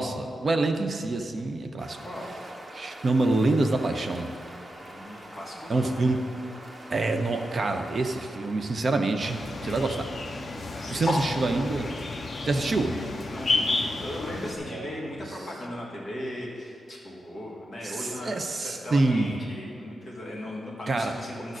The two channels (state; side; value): normal; both; correlation 0.89